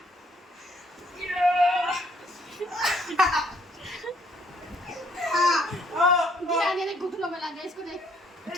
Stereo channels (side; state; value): both; normal; correlation 0.65